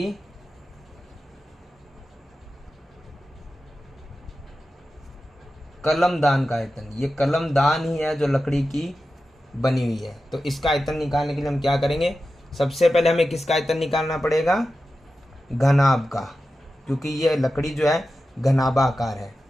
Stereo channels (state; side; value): normal; both; correlation 0.92